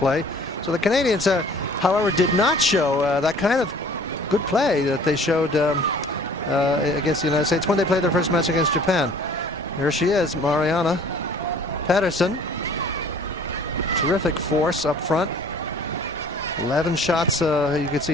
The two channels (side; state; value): both; normal; correlation 0.51